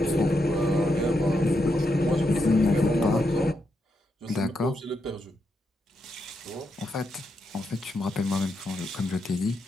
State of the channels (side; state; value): both; normal; correlation 0.83